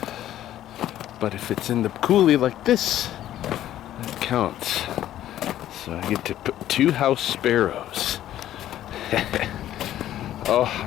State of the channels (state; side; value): quieter; right; 12.5 dB